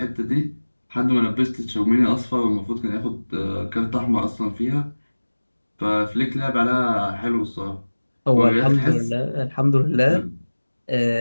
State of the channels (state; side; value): inverted; both; correlation -1.00